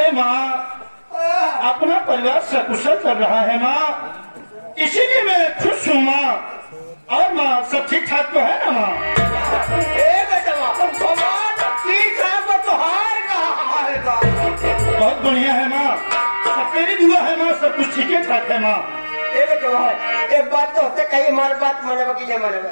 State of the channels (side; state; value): both; inverted; correlation -1.00